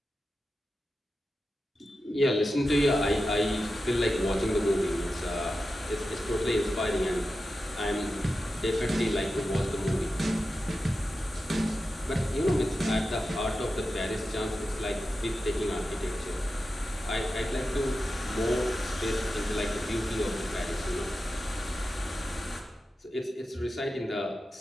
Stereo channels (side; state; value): both; normal; correlation 0.92